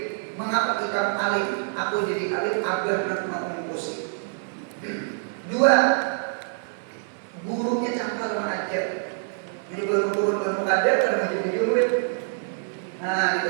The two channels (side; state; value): left; silent; 57 dB below the other